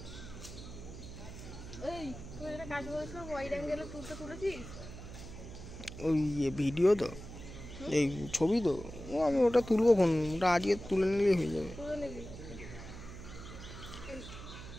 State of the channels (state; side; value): noise; right; hum, 12 dB below the sound